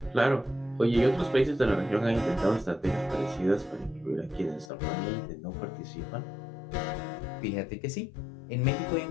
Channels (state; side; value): drops out; right; at 4.7 s